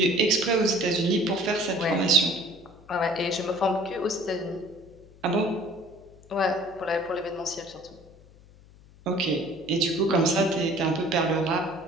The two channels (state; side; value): noise; left; hum, 24 dB below the sound